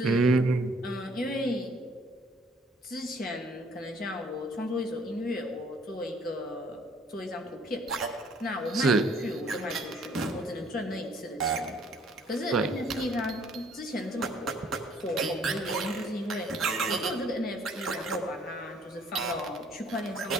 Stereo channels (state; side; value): normal; both; correlation 0.60